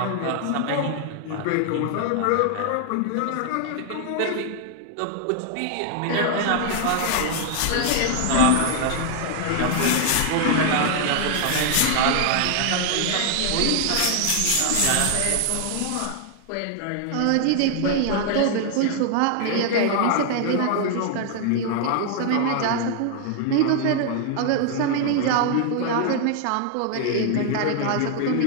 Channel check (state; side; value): different; both; correlation 0.00